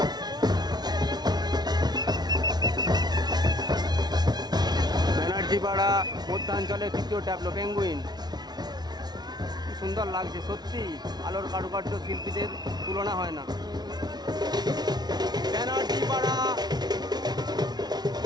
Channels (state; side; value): late; left; 0.19 ms